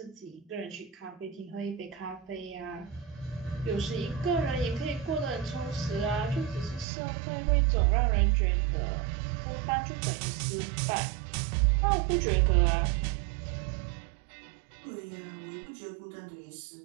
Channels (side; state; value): left; drops out; at 6.9 s